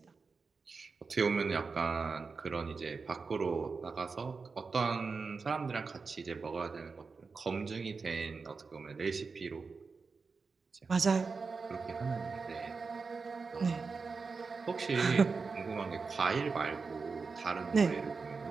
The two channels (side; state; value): left; quieter; 4.7 dB